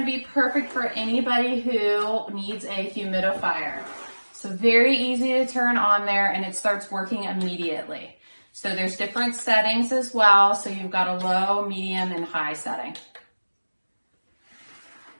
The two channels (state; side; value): inverted; both; correlation -1.00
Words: be perfect for anybody who needs a humidifier. So very easy to turn on there, and it starts working immediately. So there's different settings as well. So you've got a low, medium, and high setting.